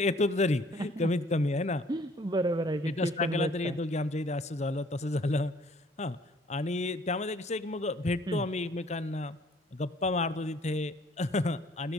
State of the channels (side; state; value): both; normal; correlation 0.58